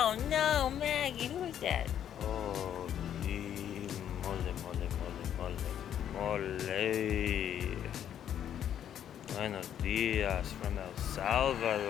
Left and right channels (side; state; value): right; quieter; 9.9 dB